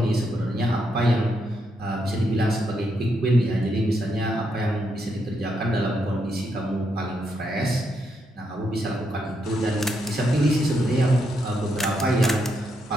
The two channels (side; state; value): both; normal; correlation 0.80